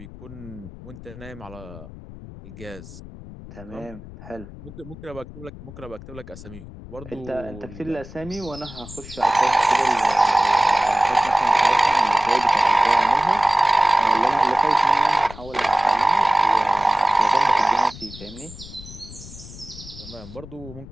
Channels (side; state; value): left; noise; rumble, 16 dB below the sound